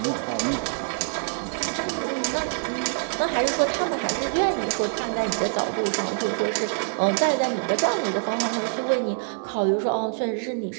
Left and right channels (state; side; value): silent; left; 61 dB below the other